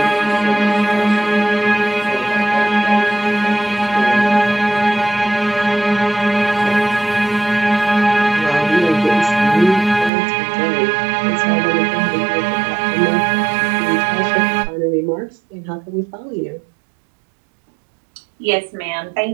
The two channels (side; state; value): left; drops out; at 10.1 s